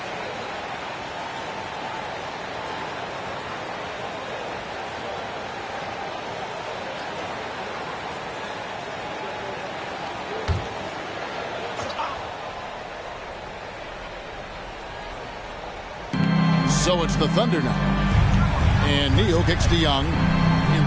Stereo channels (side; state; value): both; identical; correlation 1.00